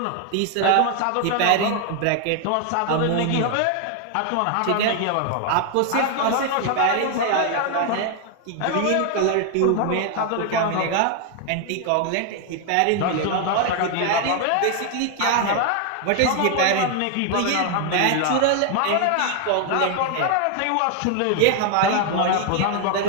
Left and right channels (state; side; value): different; both; correlation 0.00